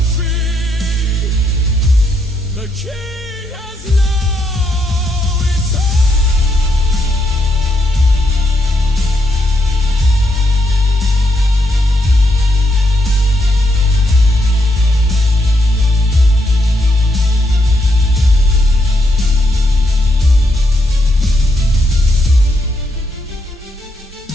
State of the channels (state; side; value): normal; both; correlation 0.79